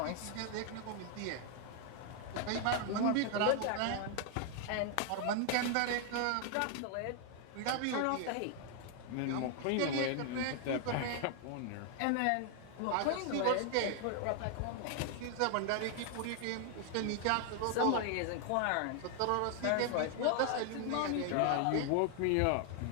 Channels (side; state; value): both; different; correlation 0.00